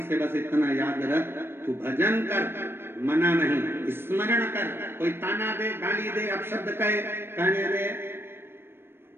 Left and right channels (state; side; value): late; left; 0.11 ms